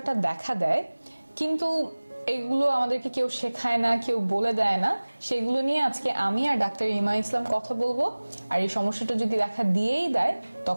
দেখা দেয়, কিন্তু এগুলো আমাদেরকে কেউ শেখায় না, কেউ বলে দেয় না, সেগুলো নিয়ে আজকে আমি আর ডাক্তার ইমা ইসলাম কথা বলবো। আর এই সমস্যাটা যদি দেখা দিয়েই দেয়,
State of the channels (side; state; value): both; inverted; correlation -1.00